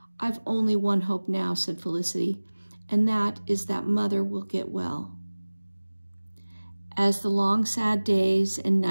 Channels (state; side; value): inverted; both; correlation -1.00